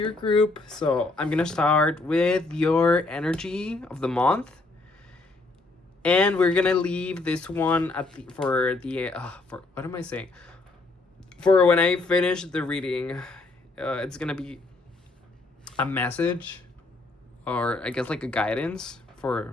group. So I'm gonna start with your energy of the month, and we're gonna leave this one at the for what am I saying? For when I finish the reading, it's gonna be a message, or I guess like a guidance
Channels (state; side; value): quieter; right; 3.3 dB